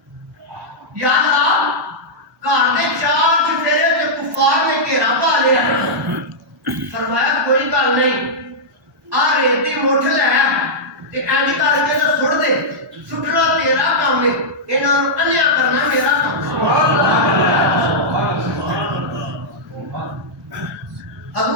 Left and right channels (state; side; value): normal; both; correlation -0.09